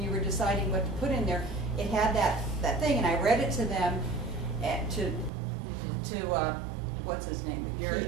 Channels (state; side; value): drops out; left; at 5.3 s